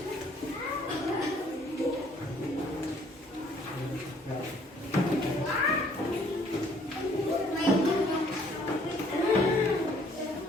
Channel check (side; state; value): both; normal; correlation 0.61